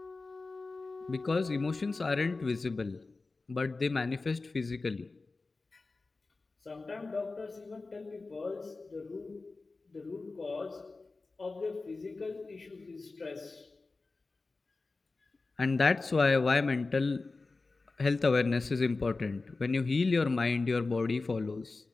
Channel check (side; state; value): right; quieter; 3.7 dB